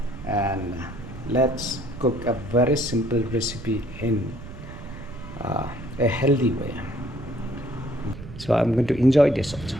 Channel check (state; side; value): noise; right; rumble, 13 dB below the sound